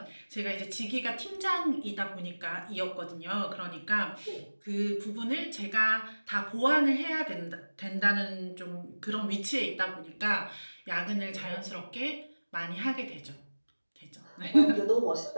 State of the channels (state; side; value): inverted; both; correlation -1.00